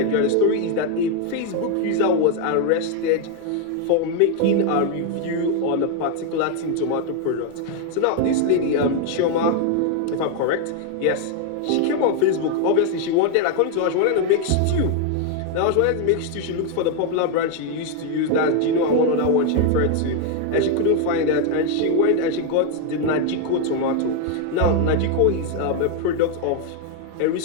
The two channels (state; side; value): different; both; correlation 0.01